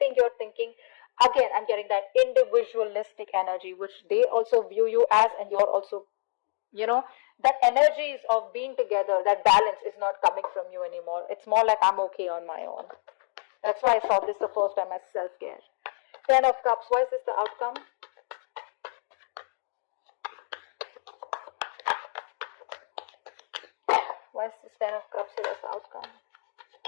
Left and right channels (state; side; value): silent; right; 57 dB below the other